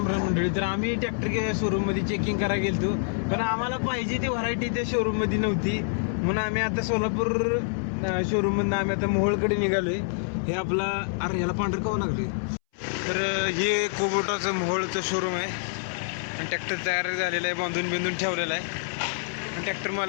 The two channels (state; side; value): silent; right; 60 dB below the other